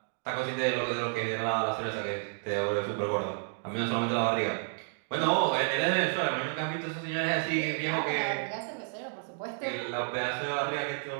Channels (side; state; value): left; silent; 57 dB below the other